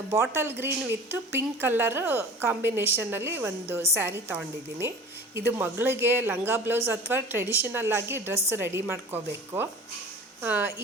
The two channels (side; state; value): both; normal; correlation 0.40